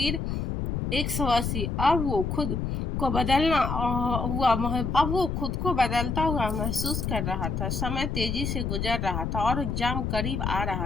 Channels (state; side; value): noise; left; rumble, 2 dB below the sound